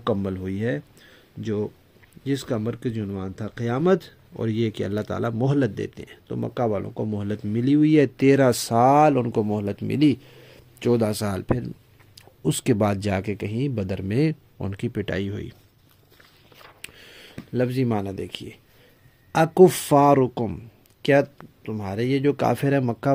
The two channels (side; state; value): both; identical; correlation 1.00